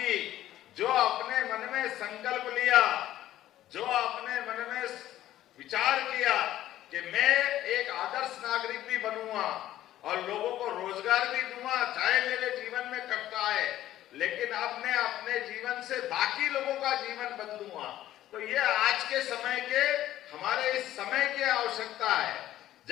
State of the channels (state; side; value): quieter; right; 13.5 dB